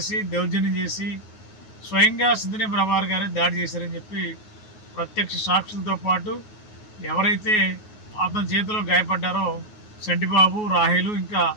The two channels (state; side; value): late; right; 9.4 ms